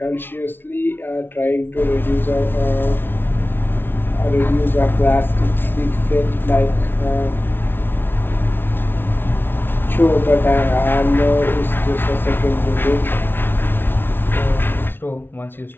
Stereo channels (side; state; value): right; late; 0.10 ms